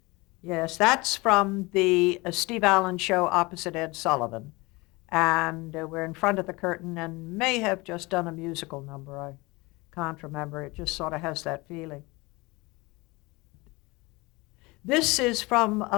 Yes, that's from the Steve Allen show opposite Ed Sullivan. And we're in front of the curtain and may have just done a musical number. I can't remember. It just sort of has that feeling. This is from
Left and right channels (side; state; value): right; quieter; 23.9 dB